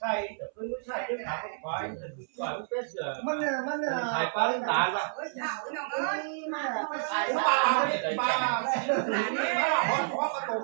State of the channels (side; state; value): left; silent; 58 dB below the other